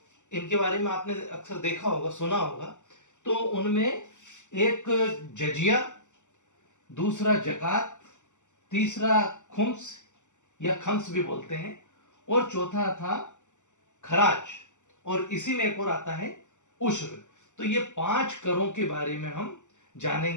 इनके बारे में आपने अक्सर देखा होगा, सुना होगा। तो उनमें एक जजिया, दूसरा जकात, तीसरा खुम्स या खम्स भी बोलते हैं, और चौथा था खराज, और इसी में एक और आता है उश्र। तो ये 5 करों के बारे में हम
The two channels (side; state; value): right; late; 0.85 ms